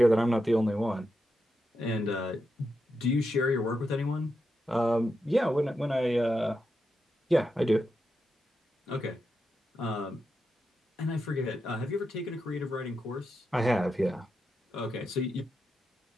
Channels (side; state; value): both; normal; correlation 0.86